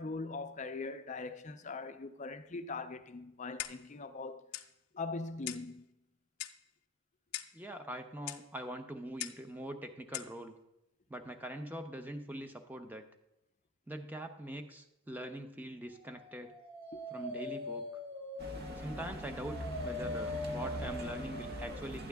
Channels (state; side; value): normal; both; correlation 0.40